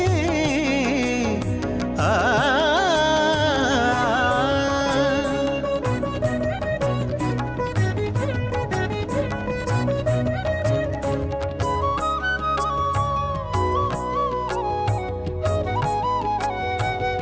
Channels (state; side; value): identical; both; correlation 1.00